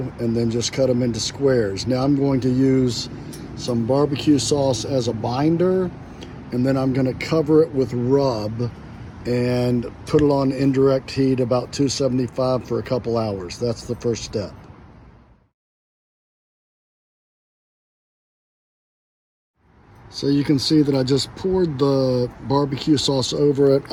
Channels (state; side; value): identical; both; correlation 1.00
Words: and then just cut them into squares. Now I'm going to use some barbecue sauce as a binder, and then I'm going to cover it with rub and put it on indirect heat about 275 for a couple hours. That's the first step. So you can see that I just poured the barbecue sauce over it.